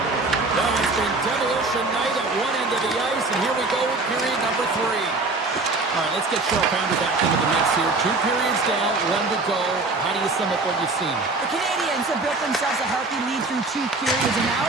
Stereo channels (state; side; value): quieter; left; 3.4 dB